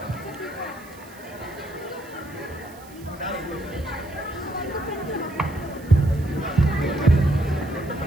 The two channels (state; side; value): noise; right; hiss, 23 dB below the sound